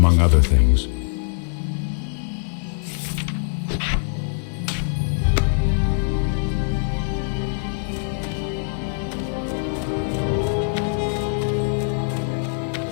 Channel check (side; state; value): right; silent; digital silence